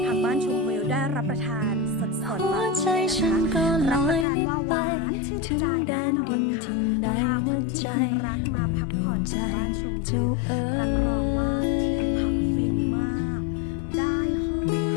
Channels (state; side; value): drops out; right; at 4.2 s